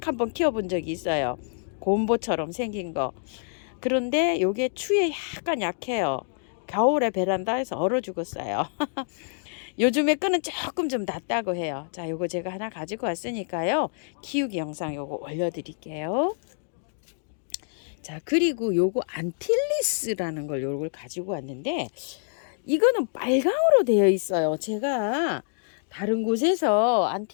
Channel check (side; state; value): right; silent; digital silence